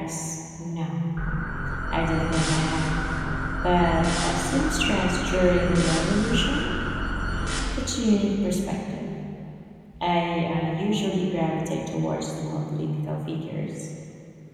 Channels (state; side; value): identical; both; correlation 1.00